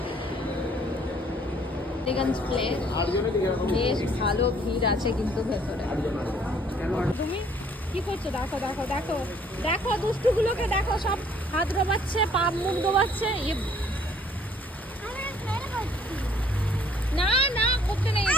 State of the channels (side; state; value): both; normal; correlation 0.60